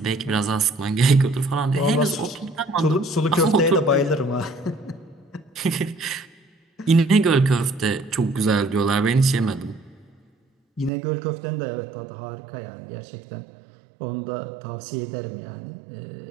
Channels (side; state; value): left; drops out; at 10.9 s